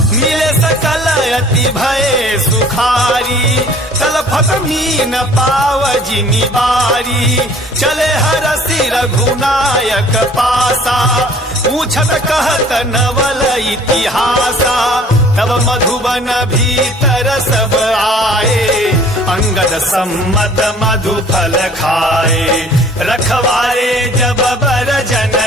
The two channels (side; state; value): both; normal; correlation 0.52